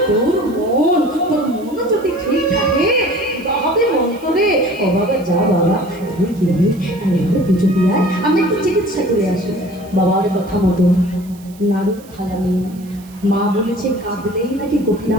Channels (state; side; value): noise; right; hiss, 24 dB below the sound